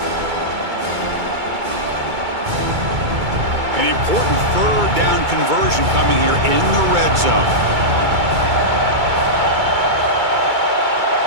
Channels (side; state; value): left; late; 2.3 ms